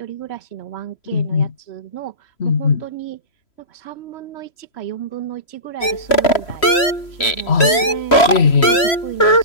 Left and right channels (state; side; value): late; right; 3.0 ms